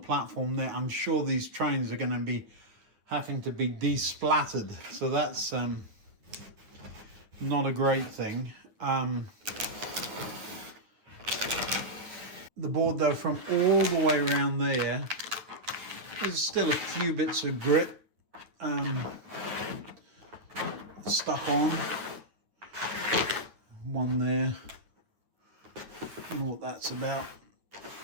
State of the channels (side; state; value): left; late; 9.4 ms